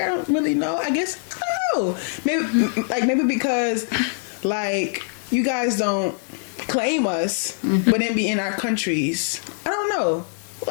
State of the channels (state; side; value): silent; right; digital silence